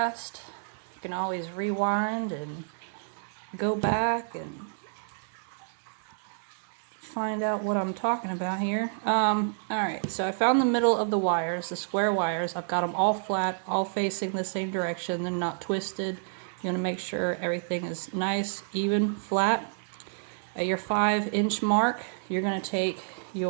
You can always rewind and go back and find out what I'm talking about here. Alright, so I found the middle of the wires, the square wires. I've got them all flat, all facing the same direction. They're not twisted. You want to make sure everything is nice, even, flat. At your 5-inch mark, you're going to take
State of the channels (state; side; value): silent; left; digital silence